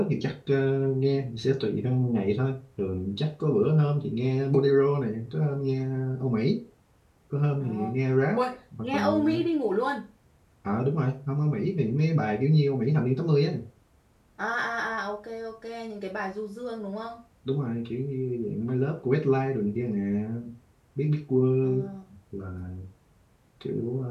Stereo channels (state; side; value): identical; both; correlation 1.00